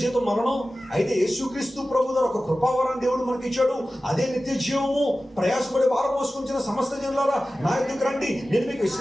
జీతం మరణం. అయితే యేసుక్రీస్తు ప్రభు ద్వారా ఒక కృపావరాన్ని దేవుడు మనకి ఇచ్చాడు. అదే నిత్య జీవము. ప్రయాసపడి భారం మోసుకొంచిన సమస్త జనులారా నా ఎదుకు రండి, నేను మీకు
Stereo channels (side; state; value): both; normal; correlation 0.95